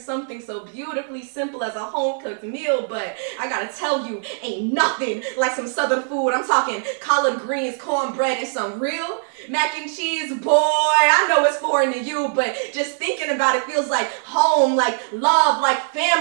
so beautifully simple as a home-cooked meal, but I gotta tell you, ain't nothing like some southern food. I'm talking collard greens, cornbread, and some real mac and cheese. Boy, I know it's foreign to you, but just thinking about it feels like home, like love, like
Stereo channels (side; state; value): left; silent; digital silence